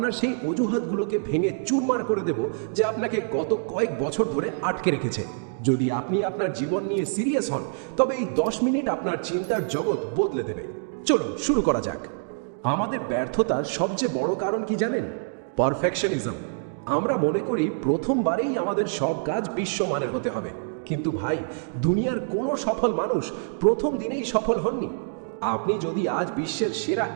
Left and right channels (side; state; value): left; silent; digital silence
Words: সেই অজুহাতগুলোকে ভেঙে চুরমার করে দেব যে আপনাকে গত কয়েক বছর ধরে আটকে রেখেছে। যদি আপনি আপনার জীবন নিয়ে সিরিয়াস হন তবে এই 10 মিনিট আপনার চিন্তার জগৎ বদলে দেবে। চলুন শুরু করা যাক। আমাদের ব্যর্থতার সবচেয়ে বড় কারণ কি জানেন? পারফেকশনিজম। আমরা মনে করি প্রথমবারেই আমাদের সব কাজ বিশ্বমানের হতে হবে। কিন্তু ভাই, দুনিয়ার কোনো সফল মানুষ প্রথম দিনেই সফল হননি। আপনি যদি আজ বিশ্বের সেরা